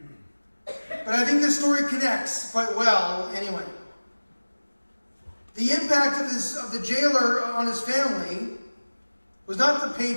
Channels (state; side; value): inverted; both; correlation -1.00